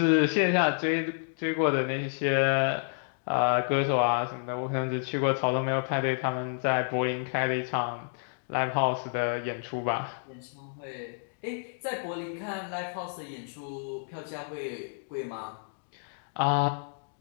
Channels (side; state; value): right; silent; digital silence